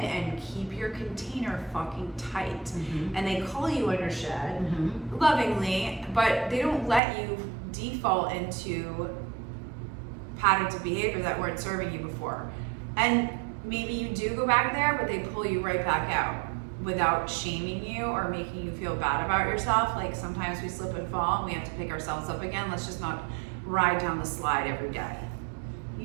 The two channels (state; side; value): drops out; left; at 7.0 s